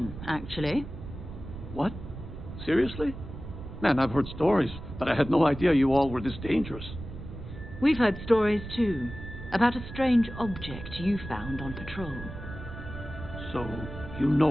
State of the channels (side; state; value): right; noise; rumble, 11 dB below the sound